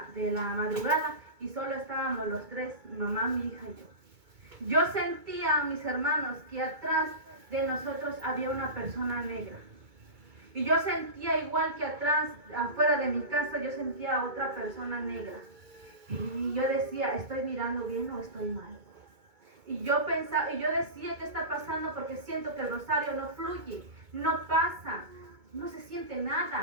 de la madrugada, y solo estábamos los 3, mi mamá, mi hija y yo. Yo sentía, mis hermanos, que atrás de nosotros había una persona negra. Y yo sentía igual que atrás, afuera de mi casa, yo sentía a otra persona negra. Y yo decía, ¿estoy mirando bien o estoy mal? Y yo pensaba, y yo decía, ¿qué está pasando? Porque siento que el rosario no fluye, no pasa, no se siente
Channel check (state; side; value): late; left; 2.2 ms